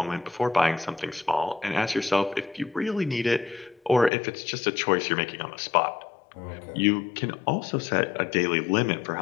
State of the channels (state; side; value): drops out; right; at 4.1 s